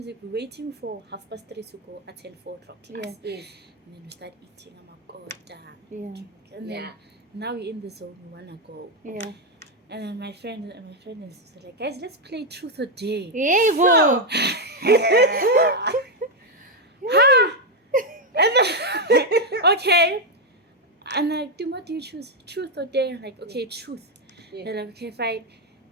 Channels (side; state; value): both; normal; correlation 0.03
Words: We're waiting for 3:30 to go attend 4 o'clock class. Yeah. Yes. And then we start eating. I'm like, oh, damn. Yeah. And then Yeah. now we're in the zone. We wanna go. Yeah. And then my friend and sister like, guys, let's play Truth or Dare. Hey, whoa. And then, okay. And like, Tumi, what do you choose? Truth or Dare? I'm like, okay, truth. Yeah. They're like, okay, fine.